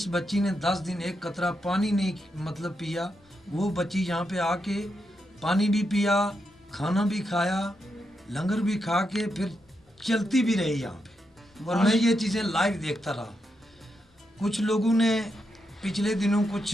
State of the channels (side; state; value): both; normal; correlation 0.84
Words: बच्ची ने 10 दिन एक कतरा पानी नहीं मतलब पिया, वो बच्ची यहाँ पे आके पानी भी पिया, खाना भी खाया, लंगर भी खा के फिर चलती भी रही यहाँ पे। और मैं ये चीज़ें लाइव देखता रहा। कुछ लोगों ने पिछले दिनों